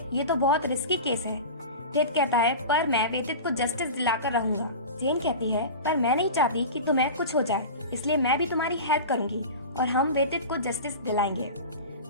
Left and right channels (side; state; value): both; inverted; correlation -0.30